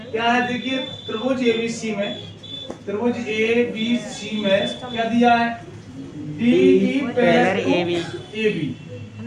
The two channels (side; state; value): both; identical; correlation 1.00